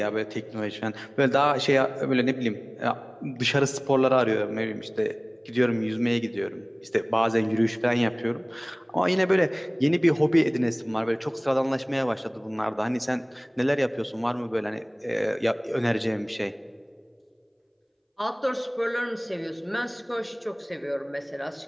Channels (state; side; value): identical; both; correlation 1.00